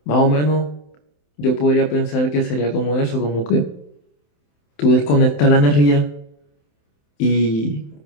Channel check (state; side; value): late; right; 27 ms